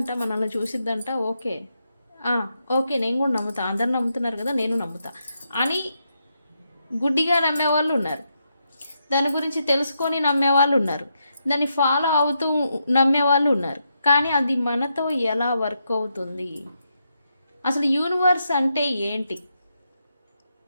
మనల్ని చూసిద్దంట. ఓకే ఓకే, నేను కూడా నమ్ముతా. అందరు నమ్ముతున్నారు కదా, నేను నమ్ముతా అని గుడ్డిగా నమ్మేవాళ్ళు ఉన్నారు. దాని గురించి తెలుసుకొని నమ్మేవాళ్ళు ఉన్నారు. దాన్ని ఫాలో అవుతూ నమ్మేవాళ్ళు ఉన్నారు. కానీ అది మనతో ఎలా వర్క్ అవుతుంది? అసలు యూనివర్స్ అంటే ఏంటి?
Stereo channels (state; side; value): inverted; both; correlation -0.82